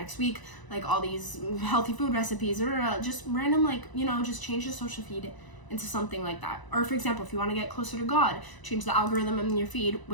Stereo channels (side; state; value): right; late; 1.0 ms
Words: week. Like all these healthy food recipes, or just random, like, you know, just change your social feed into something like that. Or for example, if you want to get closer to God, change the algorithm in your feed,